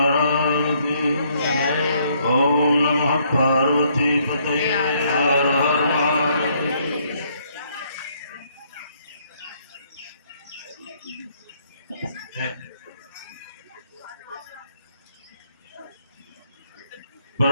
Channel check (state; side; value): inverted; both; correlation -0.68